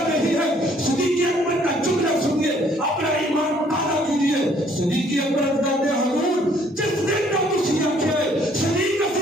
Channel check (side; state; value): both; normal; correlation 0.62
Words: نہیں ہے. صدیق اکبر کا جملہ سنیے, اپنا ایمان تازہ کیجیے. صدیق اکبر کہتے ہیں حضور جس دن کا مسیح ہے صدیق